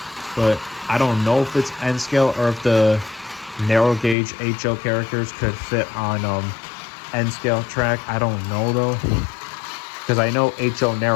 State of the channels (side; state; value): right; drops out; at 4.2 s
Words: but I don't know if it's N scale or if the narrow gauge HO characters could fit on N scale track. I don't know though, because I know HO